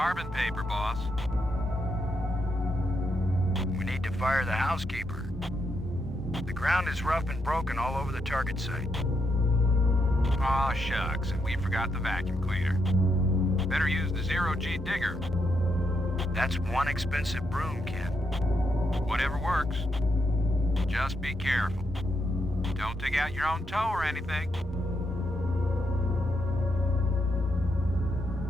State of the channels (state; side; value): noise; right; rumble, 13 dB below the sound